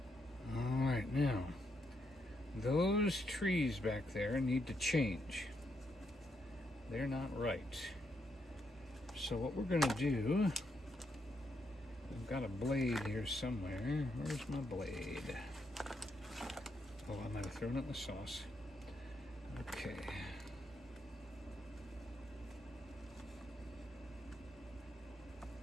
All right, now those trees back there need to change. They're not right. So what we're going to do I've got a blade here somewhere. Where's my blade? Oh, I might have thrown it in the sauce. Okay.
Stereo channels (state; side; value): normal; both; correlation 0.79